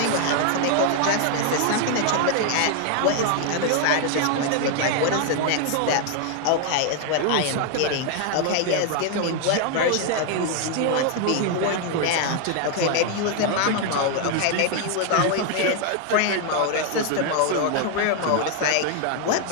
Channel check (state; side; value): different; both; correlation 0.00